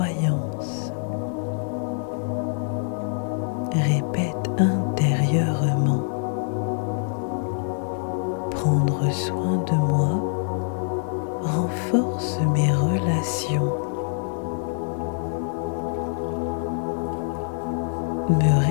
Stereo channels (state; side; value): silent; right; 56 dB below the other